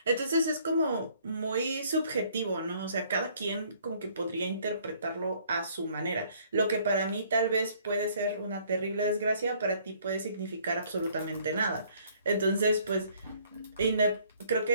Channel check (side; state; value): both; inverted; correlation -0.61